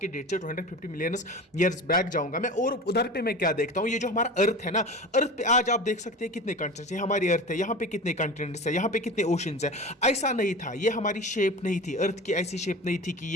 डेट से 250 मिलियन ईयर्स बैक जाऊंगा मैं। और उधर पे मैं क्या देखता हूं, ये जो हमारा अर्थ है ना, अर्थ पे आज आप देख सकते हैं कितने कंटिनेंट्स है। हमारी अर्थ है, यहाँ पे कितने कंटिनेंट्स है, यहाँ पे कितने ओशंस है। ऐसा नहीं था, ये हमारी शेप नहीं थी, अर्थ की ऐसी शेप नहीं थी कि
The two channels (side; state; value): both; normal; correlation 0.33